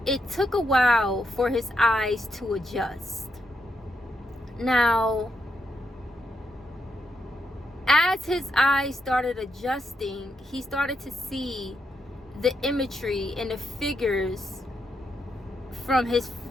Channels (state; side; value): normal; both; correlation 0.81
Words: it took a while for his eyes to adjust. Now, as his eyes started adjusting, he started to see the imagery and the figures from his